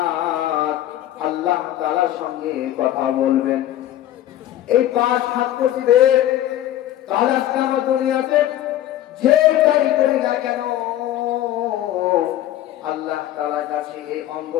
আল্লাহ তাআলার সঙ্গে কথা বলবেন। এই পাঁচ হাত দিবে। তাহলে আজকে আমরা দুনিয়াতে যেটাই করি না কেন, আল্লাহ তাআলার কাছে এই অঙ্গ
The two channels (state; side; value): quieter; right; 13.0 dB